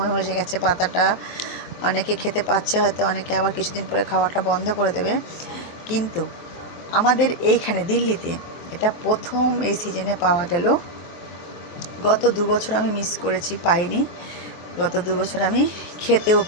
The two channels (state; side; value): late; right; 23 ms